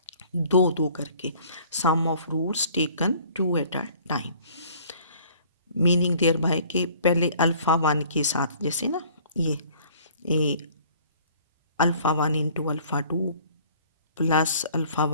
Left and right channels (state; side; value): inverted; both; correlation -0.54